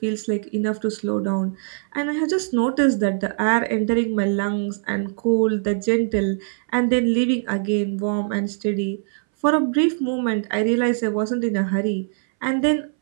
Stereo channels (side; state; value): left; silent; 63 dB below the other